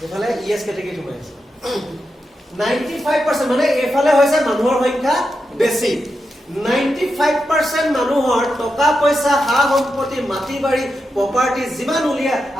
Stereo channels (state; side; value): normal; both; correlation 0.87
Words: এফালে ইএছ কেটেগৰী পাইছে 95% মানে এফালে হৈছে মানুহৰ সংখ্যা বেছি 95% মানুহৰ টকা পইচা হা সম্পত্তি মাটি বাৰী প্ৰপাৰ্টি যিমান উলিয়াই